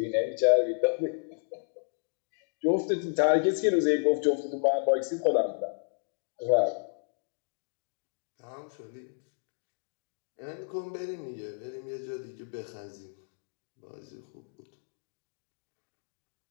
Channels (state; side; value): silent; right; digital silence